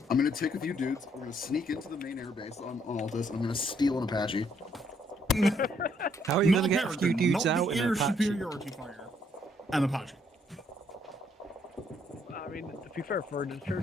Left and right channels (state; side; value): normal; both; correlation 0.70